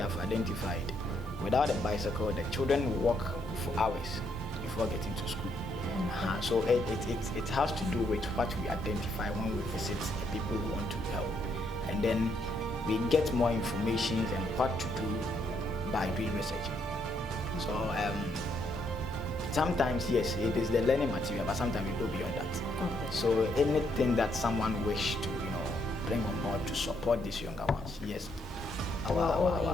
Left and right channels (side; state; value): both; normal; correlation 0.74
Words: identified, without a bicycle, the children walk for hours before getting to school. So it has to do with what we identify when we visit the people who want to help, and then we get more information and what to do by doing research. So sometimes yes, it is the learning material, but sometimes we go beyond that. Okay. So anything that someone wish to bring on board to support these younger ones, yes, yes,